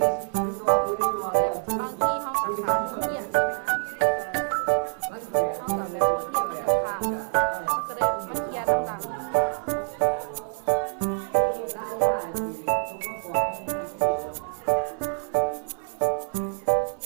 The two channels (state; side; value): silent; left; 55 dB below the other